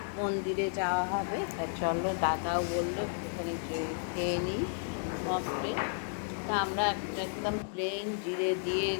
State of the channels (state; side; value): silent; right; digital silence